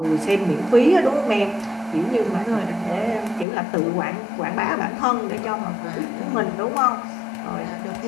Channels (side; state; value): right; drops out; at 3.5 s